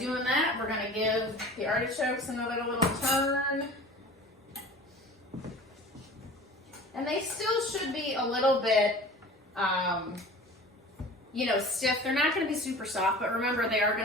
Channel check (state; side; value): normal; both; correlation 0.41